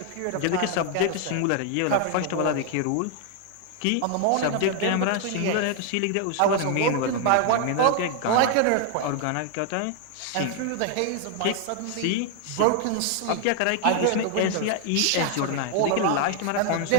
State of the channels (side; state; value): both; different; correlation 0.00